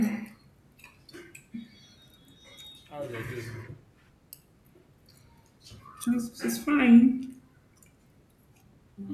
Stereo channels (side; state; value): both; identical; correlation 1.00